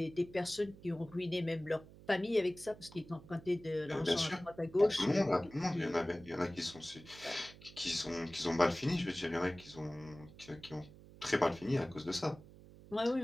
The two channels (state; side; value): noise; right; hum, 19 dB below the sound